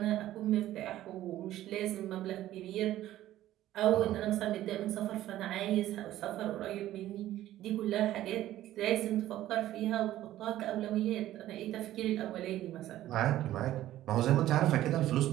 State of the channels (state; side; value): quieter; left; 13.9 dB